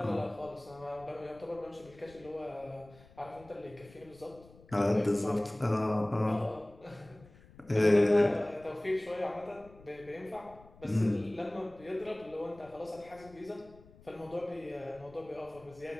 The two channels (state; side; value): noise; left; rumble, 23 dB below the sound